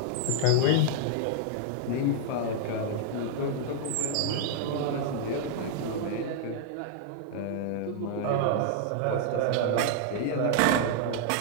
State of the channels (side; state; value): both; different; correlation -0.01